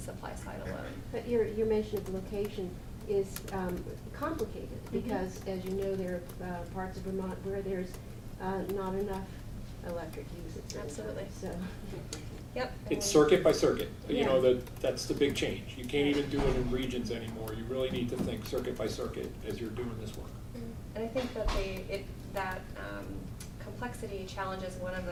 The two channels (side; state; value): both; identical; correlation 1.00